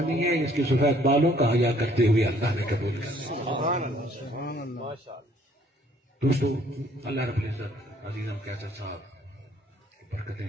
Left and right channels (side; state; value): both; normal; correlation 0.61